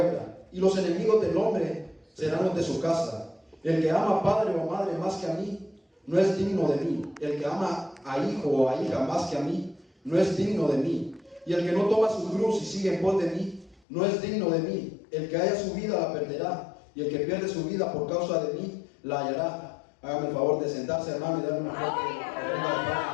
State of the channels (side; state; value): right; drops out; at 13.8 s